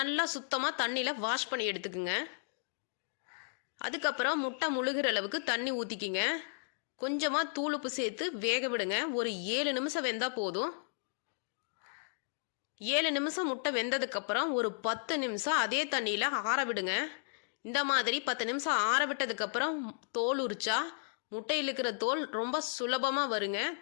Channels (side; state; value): right; silent; digital silence